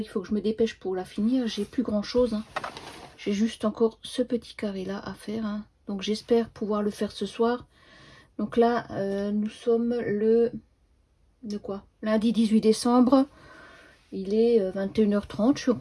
faut que je me dépêche pour la finir. J'ai plus grand chose, hein. J'ai juste encore ce petit carré là à faire, hein. Donc j'espère pouvoir le faire ce soir. Donc là nous sommes le lundi 18 décembre. Il est 21h30. Je suis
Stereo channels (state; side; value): identical; both; correlation 1.00